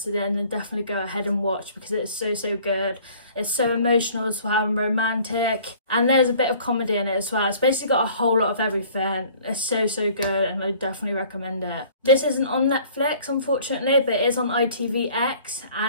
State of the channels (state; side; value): inverted; both; correlation -0.53